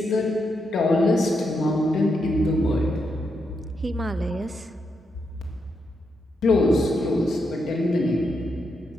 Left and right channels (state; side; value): normal; both; correlation 0.82